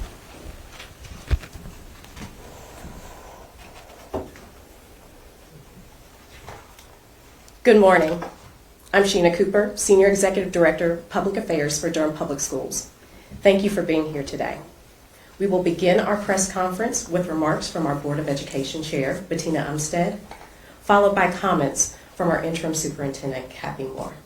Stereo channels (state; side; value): identical; both; correlation 1.00